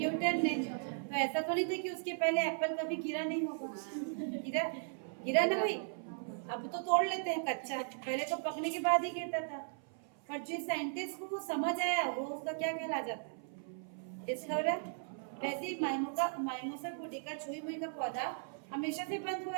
ने। तो ऐसा तो नहीं था कि उसके पहले एप्पल कभी गिरा नहीं होगा, गिरा ना भाई। अब तो तोड़ लेते हैं कच्चा, पहले तो पकने के बाद ही गिरता था। पर जो साइंटिस्ट को वो समझ आया, वो उसका क्या कहला जाता है? डिस्कवरर। वैसे ही माइमोसा पुडिका, छुई मुई का पौधा हमेशा से बंद हुआ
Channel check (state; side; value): silent; left; 53 dB below the other